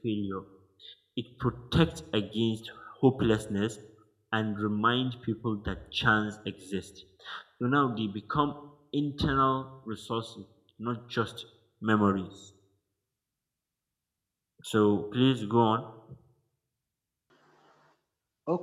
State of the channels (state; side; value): identical; both; correlation 1.00